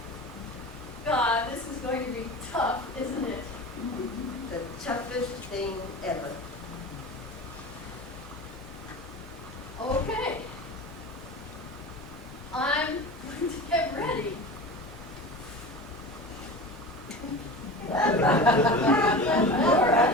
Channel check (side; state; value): both; normal; correlation 0.33